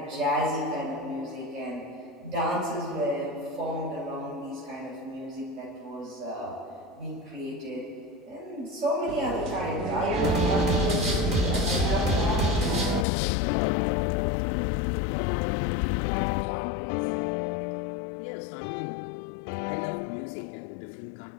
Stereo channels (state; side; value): drops out; right; at 13.1 s